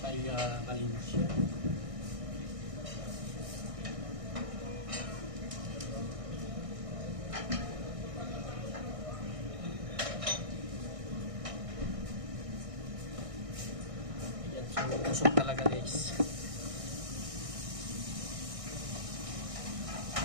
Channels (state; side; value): late; left; 1.6 ms